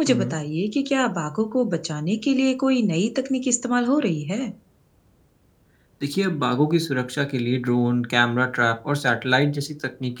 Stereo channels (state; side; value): identical; both; correlation 1.00